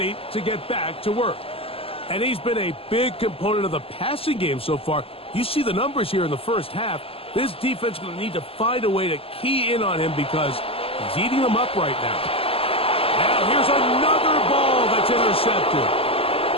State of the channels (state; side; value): late; right; 0.27 ms